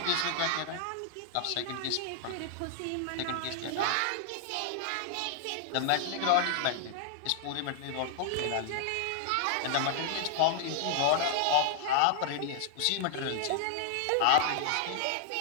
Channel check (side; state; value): both; different; correlation -0.01